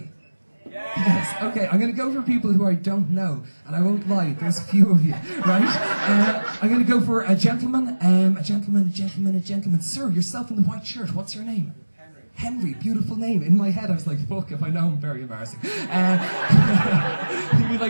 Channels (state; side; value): inverted; both; correlation -1.00